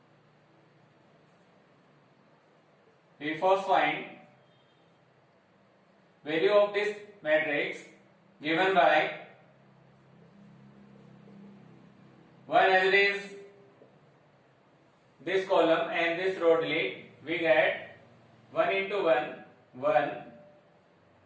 We first find value of this matrix given by 1 as it is this column and this row delete. We get 1 into 1 1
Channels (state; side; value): identical; both; correlation 1.00